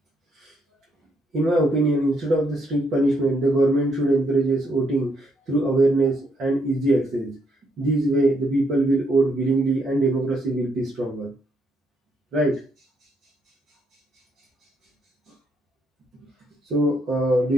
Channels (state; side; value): normal; both; correlation 0.75